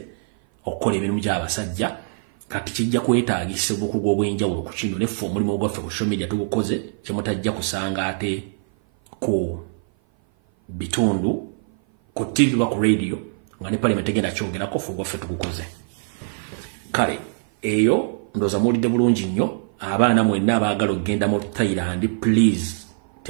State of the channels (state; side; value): silent; left; 56 dB below the other